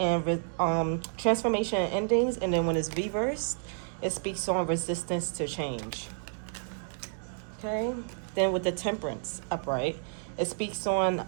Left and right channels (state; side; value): silent; left; digital silence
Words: transformation and endings. And then when it's reversed, it speaks on resistance to change. Okay. Then with the Temperance upright, it speaks on